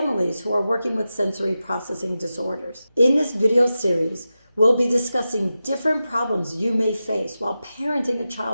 who are working with sensory processing disorders. In this video series, we'll be discussing different problems you may face while parenting a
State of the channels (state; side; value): inverted; both; correlation -0.92